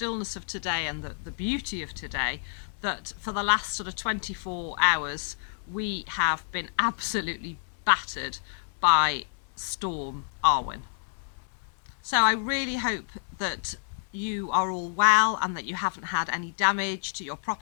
of today and the beauty of today that for the last sort of 24 hours we have been absolutely battered by Storm Arwen. So I really hope that you are all well and that you haven't had any damage to your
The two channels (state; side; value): silent; right; 59 dB below the other